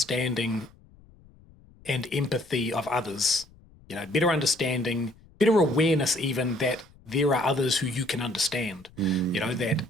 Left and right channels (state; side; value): noise; left; rumble, 26 dB below the sound